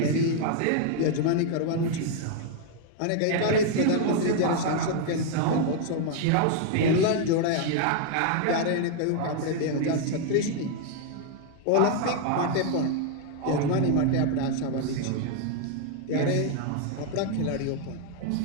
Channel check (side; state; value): both; different; correlation 0.00